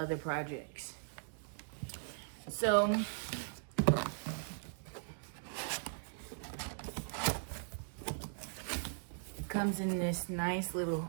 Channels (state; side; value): silent; left; digital silence